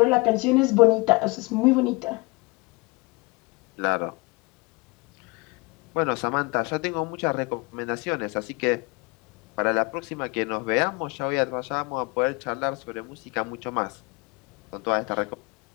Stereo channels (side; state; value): right; quieter; 26.4 dB